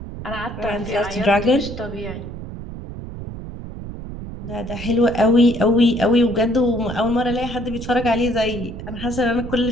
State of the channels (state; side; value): noise; right; rumble, 10 dB below the sound